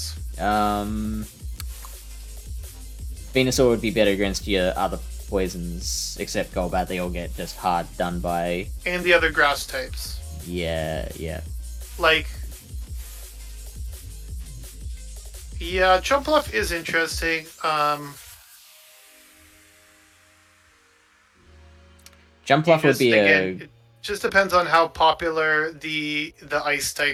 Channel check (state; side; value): identical; both; correlation 1.00